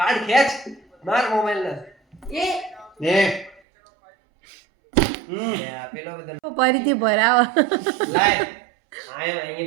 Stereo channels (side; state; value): left; drops out; at 3.6 s